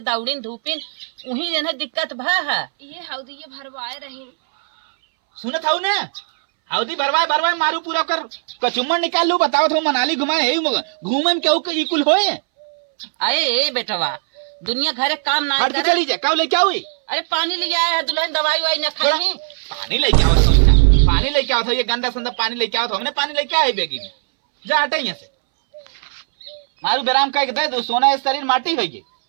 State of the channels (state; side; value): silent; left; 66 dB below the other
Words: दौड़ीन धूपिन वही इन्हें दिक्कत भ है। ये हौदी ये भरवाए रही सुनत हूँ ना हौदी भरवाए मारू पूरा कर कचुम्बर निकाल लू बताओ तो मनाली घुमाए घूमे में क्या कुल होए। अरे बेटवा दुनिया घरे काम ना हट के चली जा क्या लेके हुई। अरे पानी ले आया है दुल्हन दवाई वाई न खाई पानी लेके आओ सोचना पानी लेके आओ था ये गंदा संदा पानी लेके आओ था हमने पानी लेके आए बेगी में जा हटे यहाँ से मारू बेराम का दे दो सोना इस शरीर माटी होगी।